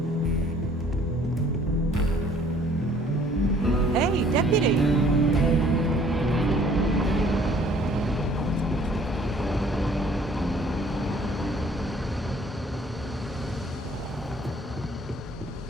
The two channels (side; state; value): both; normal; correlation 0.57